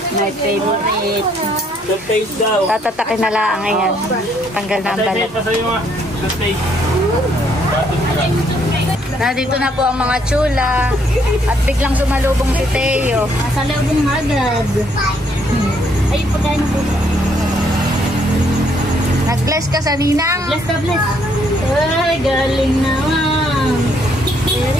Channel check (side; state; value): both; normal; correlation 0.69